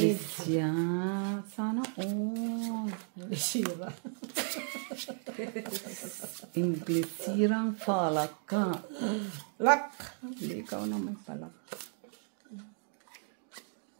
siya. Sana all. Sira. English sirang palak ka. Lak. Hindi ikaw na may palak.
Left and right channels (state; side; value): silent; left; 55 dB below the other